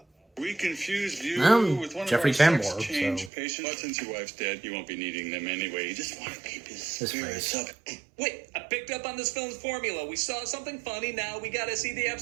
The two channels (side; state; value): left; drops out; at 3.3 s